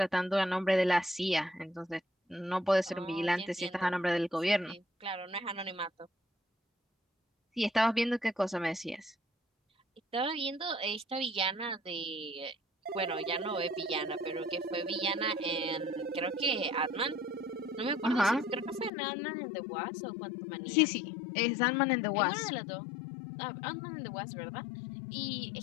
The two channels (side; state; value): right; drops out; at 18.9 s